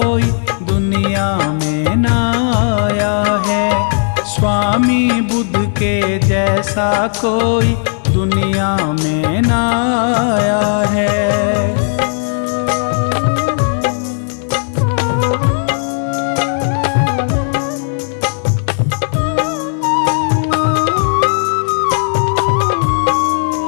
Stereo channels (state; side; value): silent; right; digital silence